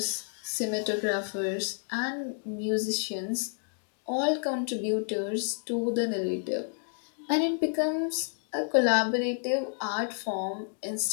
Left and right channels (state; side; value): silent; right; 58 dB below the other